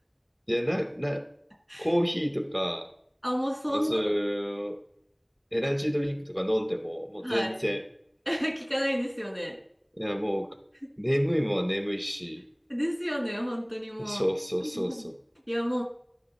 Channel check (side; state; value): both; identical; correlation 1.00